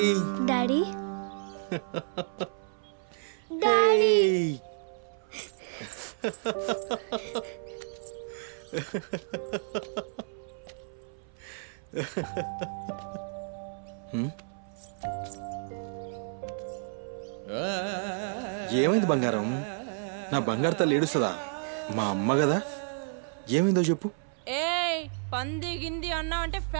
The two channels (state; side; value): silent; left; 57 dB below the other